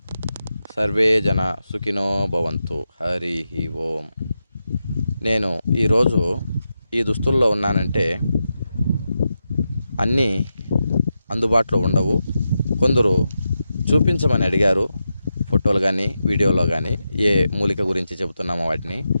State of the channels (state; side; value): inverted; both; correlation -0.88